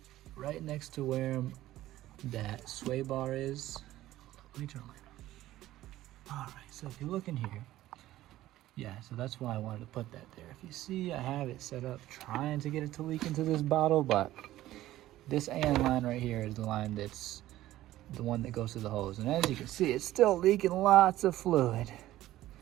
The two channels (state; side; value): quieter; left; 14.9 dB